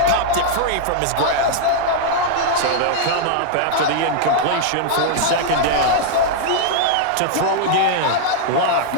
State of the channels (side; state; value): both; different; correlation -0.01